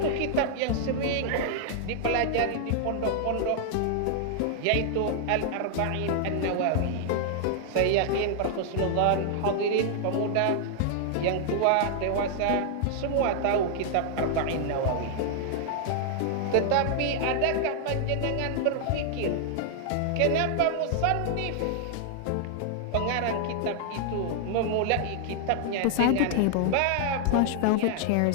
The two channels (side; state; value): both; different; correlation -0.01